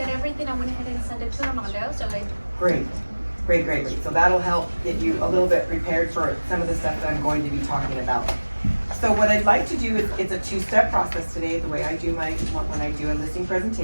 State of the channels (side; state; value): both; inverted; correlation -1.00